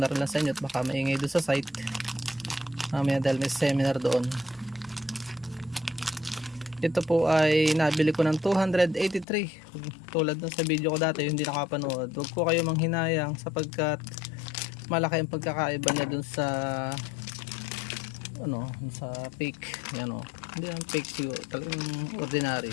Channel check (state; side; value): drops out; right; at 9.2 s